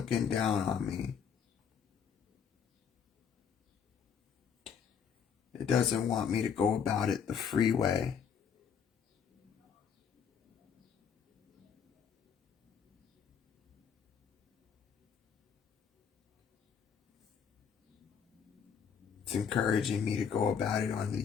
down on me. It doesn't want me to go about it the free way. It's encouraging me to go about it on the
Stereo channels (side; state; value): right; quieter; 7.1 dB